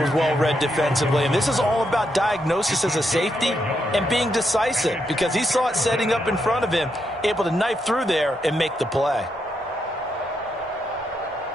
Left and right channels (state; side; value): normal; both; correlation 0.80